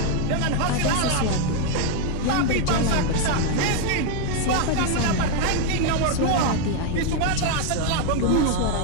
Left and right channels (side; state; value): both; different; correlation 0.01